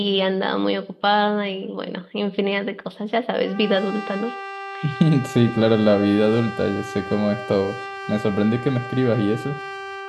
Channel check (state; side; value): identical; both; correlation 1.00